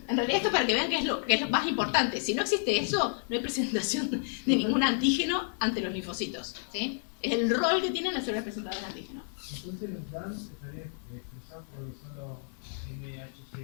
en realidad esto para que vean que es lo más importante. Si no existe eso, no hay presentación de ningún antígeno ante los linfocitos. ¿Sí? Es el rol que tienen las células presentadoras de antígeno. Entonces los DAMs estarían expresados por solo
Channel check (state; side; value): silent; right; 57 dB below the other